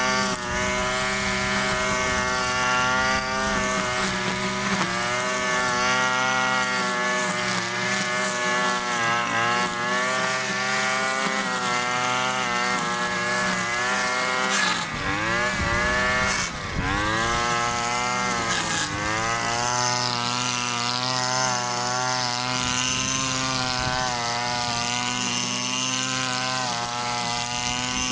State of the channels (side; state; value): both; identical; correlation 1.00